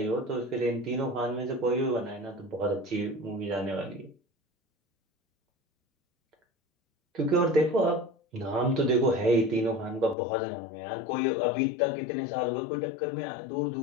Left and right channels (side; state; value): right; drops out; at 10.2 s